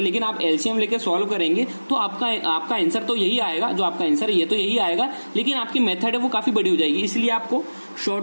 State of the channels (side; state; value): both; inverted; correlation -1.00